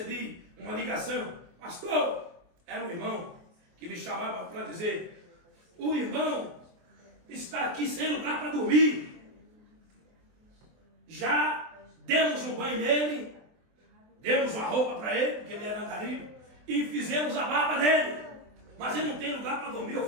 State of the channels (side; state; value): left; late; 23 ms